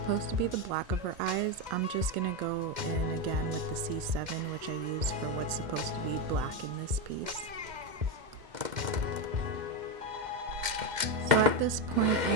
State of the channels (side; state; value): left; late; 2.1 ms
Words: to be the black of her eyes, I'm just gonna go in again with the C7, which I use for what's supposed to be black in this piece. So at this point